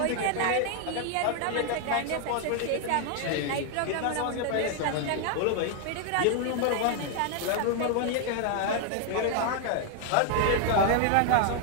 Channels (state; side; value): different; both; correlation 0.00